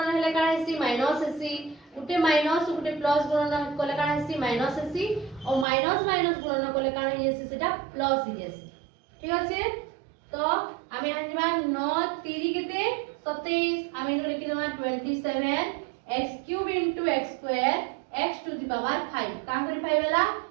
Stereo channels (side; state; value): left; drops out; at 5.7 s